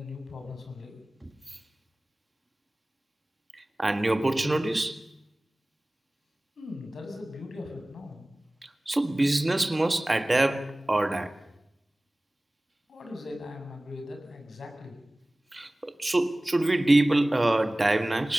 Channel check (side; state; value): both; normal; correlation 0.98